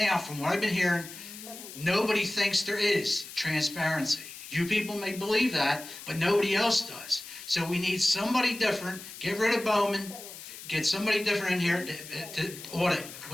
from what I've been hearing, nobody thinks there is transparency. You people may believe that, but nobody else does. So we need somebody different, get rid of Bowman, get somebody different in here to audit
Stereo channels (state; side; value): noise; left; hiss, 13 dB below the sound